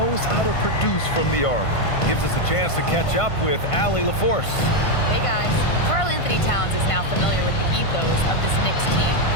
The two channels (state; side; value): late; right; 1.5 ms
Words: how to produce from the arc. Gives us a chance to catch up with Allie LaForce. Hey guys, Karl Anthony Towns is now familiar with the ethos of this Knicks team.